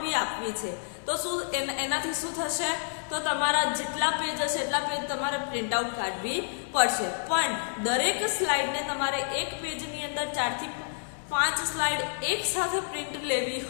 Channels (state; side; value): silent; right; digital silence